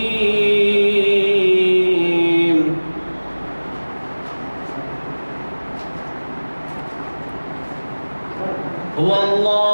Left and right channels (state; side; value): inverted; both; correlation -1.00